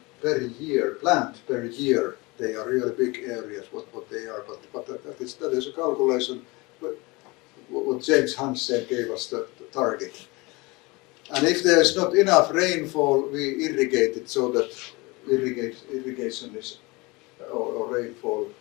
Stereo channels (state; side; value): quieter; right; 24.7 dB